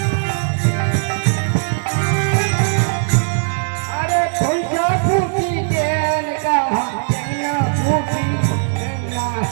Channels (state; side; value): silent; left; 58 dB below the other